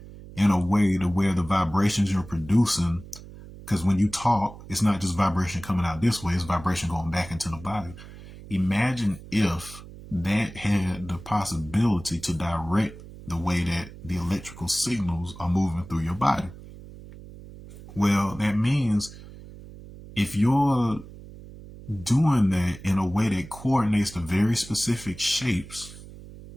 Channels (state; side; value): noise; right; hum, 16 dB below the sound